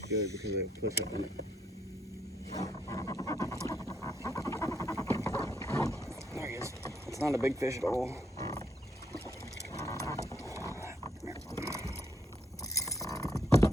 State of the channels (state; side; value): normal; both; correlation 0.73